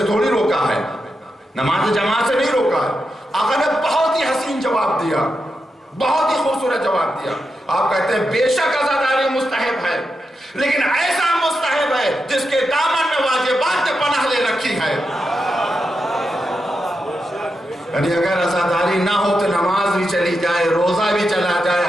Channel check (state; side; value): normal; both; correlation 0.87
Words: تھوڑی روکا ہے، نماز جماعت سے نہیں روکا ہے۔ آقا نے بہت ہی حسین جواب دیا، بہت ہی خوبصورت جواب دیا۔ آپ کہتے ہیں بے شک عزاداری مستحب ہے، لیکن ایسا مستحب ہے جس کے دامن میں واجبات نے پناہ لے رکھی ہے۔ یعنی اگر عزاداری نہ ہو تو نماز بھی چلی جائے، روزہ بھی چلا جائے،